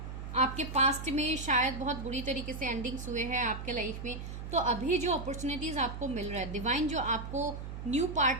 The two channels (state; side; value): noise; right; hum, 8 dB below the sound